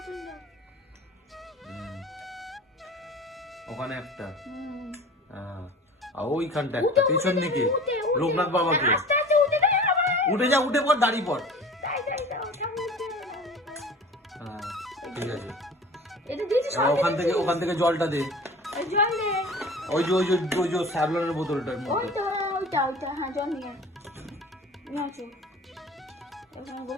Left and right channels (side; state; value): both; normal; correlation 0.40